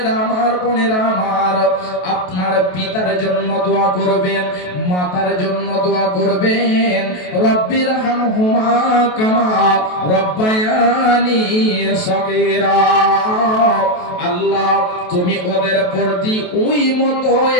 আমার, বোনেরা আমার, আপনার পিতার জন্য দোয়া করবেন, মাতার জন্য দোয়া করবেন। রব্বির হামহুমা কামা রব্বায়ানি সগীরা। আল্লাহ তুমি ওদের প্রতি ওই মতো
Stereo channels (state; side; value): late; right; 28 ms